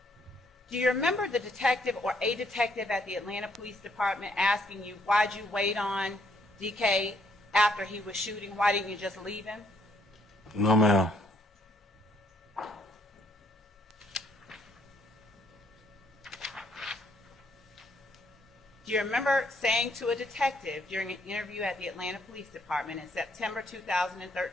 Do you remember the detective or a detective at the Atlanta Police Department asking you, why'd you wait on DK after he was shooting? Why didn't you just leave him? No, ma'am. Do you remember saying to a detective during an interview at the Atlanta Police Department in September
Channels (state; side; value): normal; both; correlation 0.69